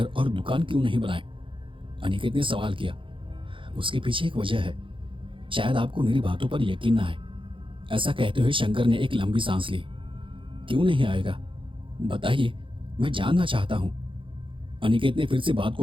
और दुकान क्यों नहीं बनाए? अनिकेत ने सवाल किया। उसके पीछे एक वजह है, शायद आपको मेरी बातों पर यकीन ना आए। ऐसा कहते हुए शंकर ने एक लंबी सांस ली। क्यों नहीं आएगा? बताइए, मैं जानना चाहता हूं। अनिकेत ने फिर से बात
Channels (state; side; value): late; left; 0.25 ms